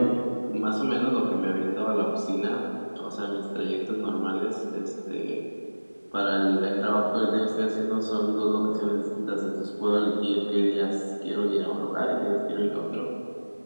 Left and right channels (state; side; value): inverted; both; correlation -1.00